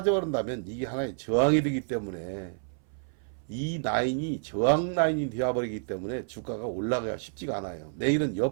이게 하나의 저항이 되기 때문에 이 라인이 저항 라인이 되어버리기 때문에 주가가 올라가기가 쉽지가 않아요. 내일은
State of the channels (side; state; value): left; silent; 58 dB below the other